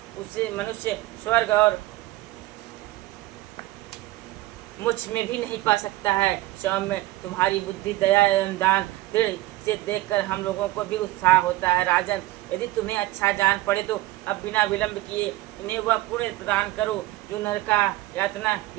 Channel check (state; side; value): quieter; left; 17.6 dB